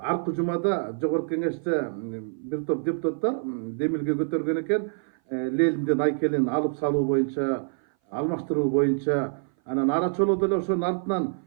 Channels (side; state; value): left; silent; 58 dB below the other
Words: арқы жумада Жогорку Кеңеште бир топ депутаттар демилге көтөргөн экен. Лелинден айкелин алып салуу боюнча, алмаштыруу боюнча, анан ара чоло деле ошонун артынан